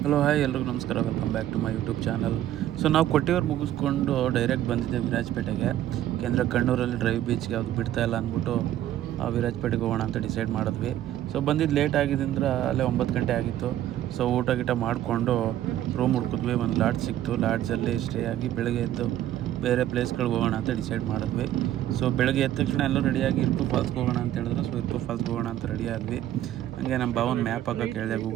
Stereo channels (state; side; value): quieter; left; 12.5 dB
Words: ಹಲೋ ಹಾಯ್ ಎಲ್ರಿಗೂ ನಮಸ್ಕಾರ, welcome back to my YouTube channel. So ನಾವು ಕೊಟ್ಟಿಯೂರು ಮುಗಿಸ್ಕೊಂಡು ಡೈರೆಕ್ಟ್ ಬಂದಿದ್ದೆ ವಿರಾಜಪೇಟೆಗೆ. ಯಾಕೆಂದರೆ ಕಣ್ಣೂರಲ್ಲಿ ಡ್ರೈವ್ ಬೀಚ್ಗೆ ಯಾವುದು ಬಿಡ್ತಾ ಇಲ್ಲ ಅಂದ್ಬಿಟ್ಟು ವಿರಾಜಪೇಟೆಗೆ ಹೋಗೋಣ ಅಂತ ಡಿಸೈಡ್ ಮಾಡಿದ್ವಿ. ಸೊ ಬಂದಿದ್ದು ಲೇಟ್ ಆಗಿದ್ದರಿಂದ ಅಲ್ಲೇ 9 ಗಂಟೆ ಆಗಿತ್ತು. ಸೊ ಊಟ ಗೀಟ ಮಾಡಿಕೊಂಡು ರೂಮ್ ಹುಡ್ಕಿದ್ವಿ. ಒಂದು ಲಾಡ್ಜ್ ಸಿಕ್ತು. ಲಾಡ್ಜಲ್ಲಿ ಸ್ಟೇ ಆಗಿ ಬೆಳಗ್ಗೆ ಎದ್ದು ಬೇರೆ ಪ್ಲೇಸ್ಗಳಿಗೆ ಹೋಗೋಣ ಅಂತ ಡಿಸೈಡ್ ಮಾಡಿದ್ವಿ. ಸೊ ಬೆಳಗ್ಗೆ ಎದ್ದ ತಕ್ಷಣ ಎಲ್ಲರೂ ರೆಡಿಯಾಗಿ ಇರುಪು ಫಾಲ್ಸ್ಗೆ ಹೋಗೋಣ ಅಂತ ಹೇಳಿದ್ರು. ಸೊ ಇರುಪು ಫಾಲ್ಸ್ಗೆ ಹೋಗೋಣ ಅಂತ ರೆಡಿ ಆದ್ವಿ. ಹಂಗೆ ನಮ್ಮ ಭಾವನ ಮ್ಯಾಪ್ ಹಾಕೋಕೆ ಹೇಳಿದೆ,